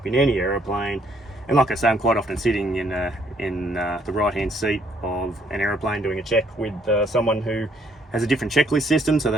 in any aeroplane, and like I say, I'm quite often sitting in the right-hand seat of an aeroplane doing a check with someone who has a different checklist system, so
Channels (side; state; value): both; normal; correlation 0.67